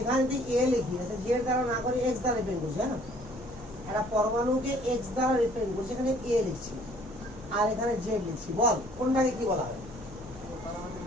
যদি এ লিখি, জেড দ্বারা না করে এক্স দ্বারা রিপ্রেজেন্ট করছি, হ্যাঁ, একটা পরমাণুকে এক্স দ্বারা রিপ্রেজেন্ট করছি, এখানে এ লিখছি আর এখানে জেড লিখছি। বল কোনটাকে কি বলা হয়?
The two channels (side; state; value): right; noise; hum, 20 dB below the sound